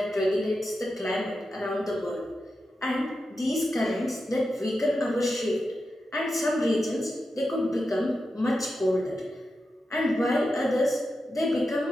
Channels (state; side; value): normal; both; correlation 0.90